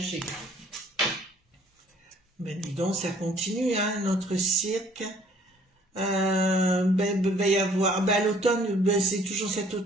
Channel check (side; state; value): both; normal; correlation 0.58